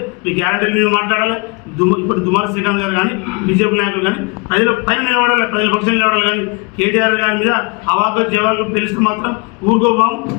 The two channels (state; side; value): quieter; right; 29.8 dB